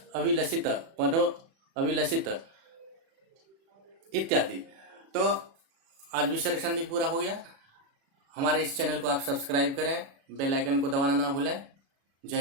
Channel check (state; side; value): late; left; 36 ms